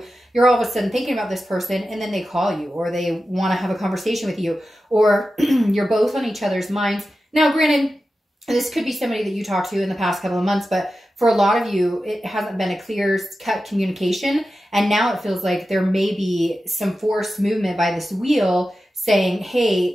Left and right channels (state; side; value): normal; both; correlation 0.92